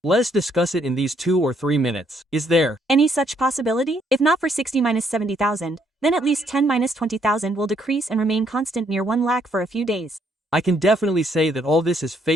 Let's discuss it in these 2 or 3 minutes. Is there any such possibility? If not for 60 minus 70,000, then at least 10 minus 20,000 will decrease and remain constant near 1 lakh for a few days. I can definitely say that all this is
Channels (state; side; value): normal; both; correlation 0.70